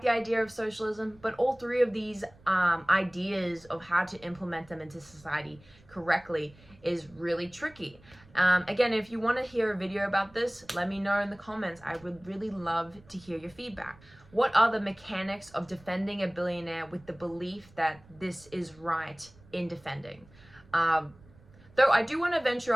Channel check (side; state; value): right; noise; rumble, 25 dB below the sound